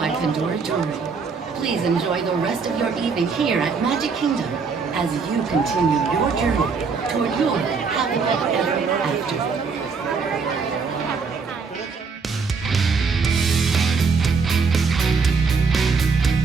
Pandora Jewelry. Please enjoy the rest of your evening here at Magic Kingdom as you continue your journey toward your happily ever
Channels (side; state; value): left; quieter; 5.0 dB